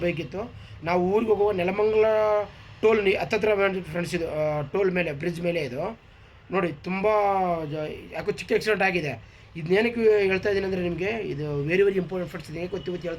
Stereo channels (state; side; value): identical; both; correlation 1.00